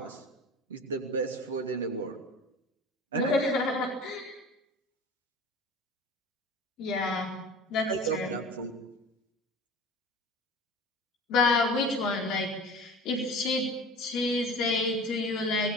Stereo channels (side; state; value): both; normal; correlation 0.38